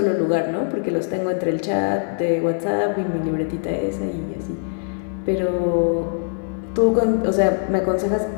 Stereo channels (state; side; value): silent; right; digital silence